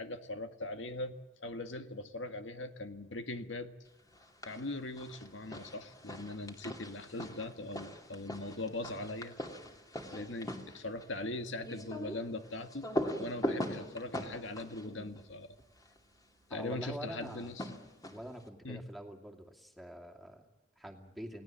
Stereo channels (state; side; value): normal; both; correlation 0.34